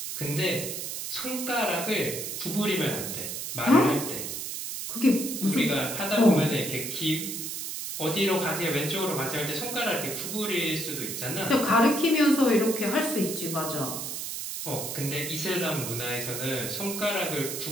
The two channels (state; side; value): noise; right; hiss, 5 dB below the sound